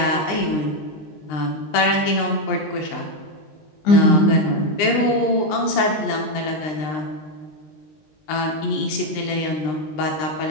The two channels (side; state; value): right; late; 20 ms